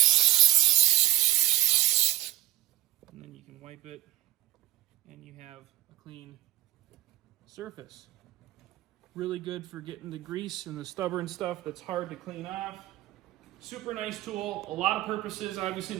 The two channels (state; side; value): quieter; left; 15.7 dB